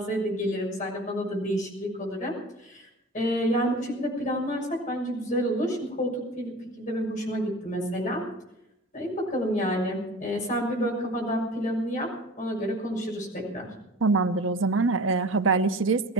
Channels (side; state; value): both; normal; correlation 0.40